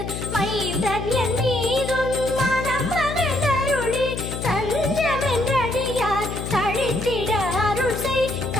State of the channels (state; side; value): noise; left; hum, 6 dB below the sound